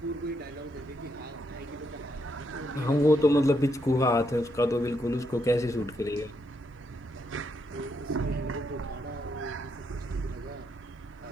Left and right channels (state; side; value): normal; both; correlation 0.78